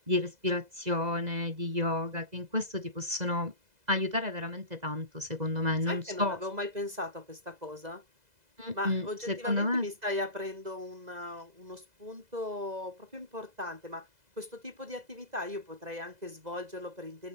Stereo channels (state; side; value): late; left; 2.0 ms